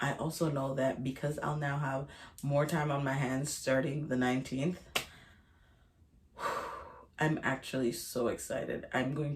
also know that because I'll now have more time on my hands starting the 19th, I'm actually so excited. I'm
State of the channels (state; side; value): identical; both; correlation 1.00